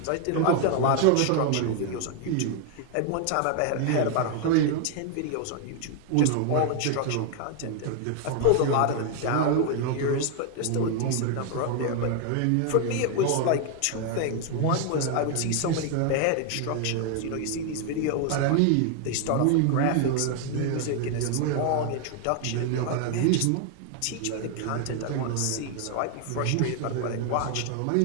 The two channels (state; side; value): different; both; correlation 0.00